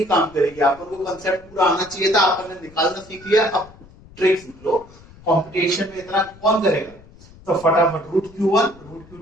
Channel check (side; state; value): left; noise; rumble, 23 dB below the sound